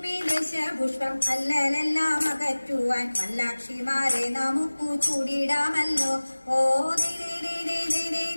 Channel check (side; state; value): both; inverted; correlation -1.00